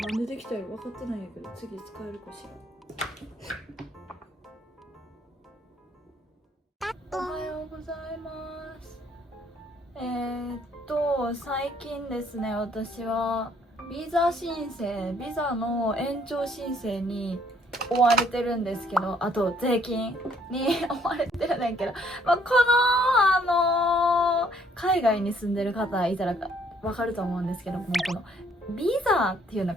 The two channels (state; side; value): normal; both; correlation 0.65